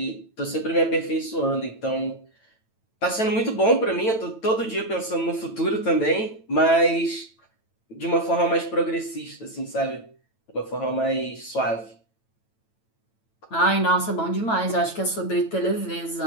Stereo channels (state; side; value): late; right; 9.0 ms